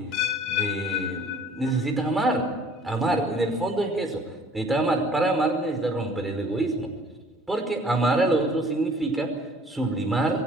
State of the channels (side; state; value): both; normal; correlation 0.53